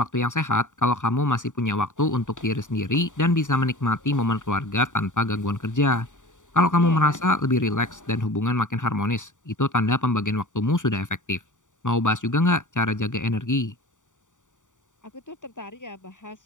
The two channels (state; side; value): late; right; 0.86 ms